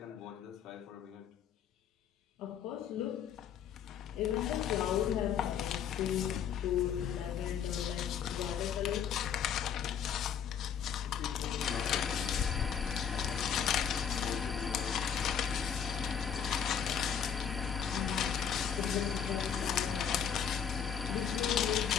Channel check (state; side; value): quieter; right; 8.0 dB